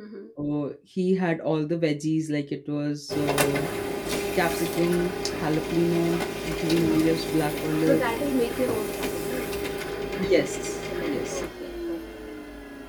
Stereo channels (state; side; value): identical; both; correlation 1.00